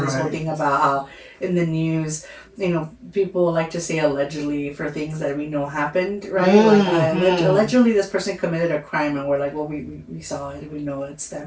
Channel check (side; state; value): both; identical; correlation 1.00